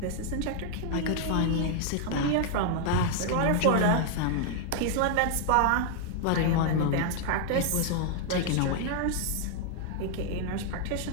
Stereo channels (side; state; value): both; different; correlation 0.00